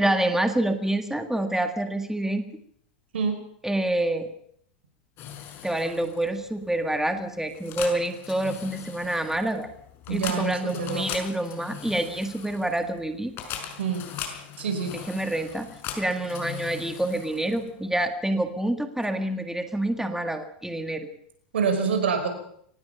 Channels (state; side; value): normal; both; correlation 0.64